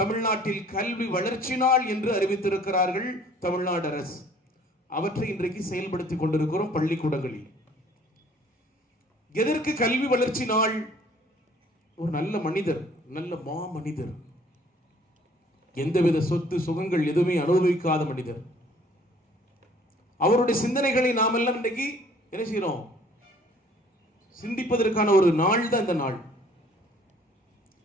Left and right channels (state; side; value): normal; both; correlation 0.56